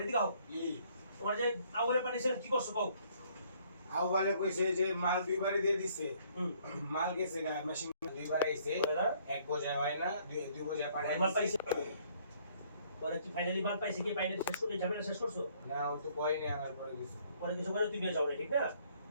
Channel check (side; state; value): both; inverted; correlation -0.63